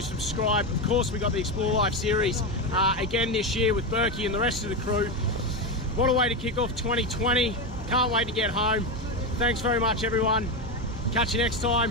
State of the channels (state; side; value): normal; both; correlation 0.13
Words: subscribe. Of course, we got the Explore Life series again this year with Berkey and the rest of the crew. What a way to kick off 2020. Can't wait to get home. Thanks very much, everyone. Catch you next